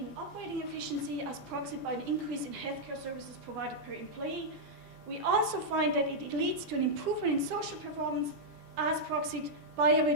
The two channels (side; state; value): both; normal; correlation -0.06